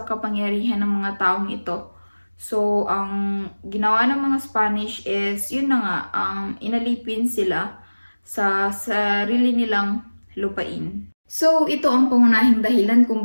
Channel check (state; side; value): inverted; both; correlation -1.00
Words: kapangyarihan ng mga taong ito. So, ang ginawa ng mga Spanish is, yun na nga, inalipin sila sa sarili nilang lupain. So, ito ang pangunahing dahilan kung